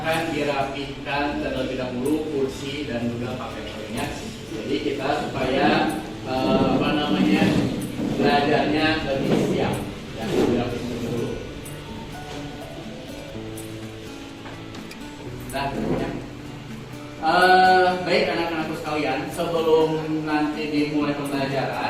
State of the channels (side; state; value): both; identical; correlation 1.00